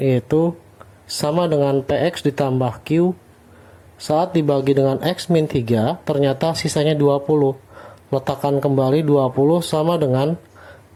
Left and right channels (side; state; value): both; identical; correlation 1.00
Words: yaitu sama dengan PX ditambah Q. Saat dibagi dengan x min 3, ternyata sisanya 20. Letakkan kembali 20 sama dengan,